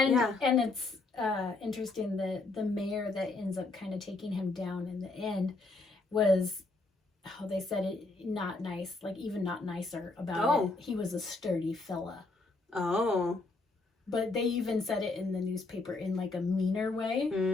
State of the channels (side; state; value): right; quieter; 3.4 dB